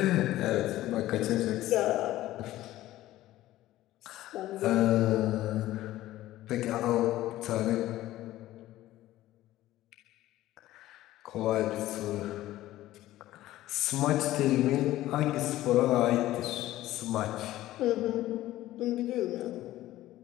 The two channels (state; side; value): quieter; right; 15.3 dB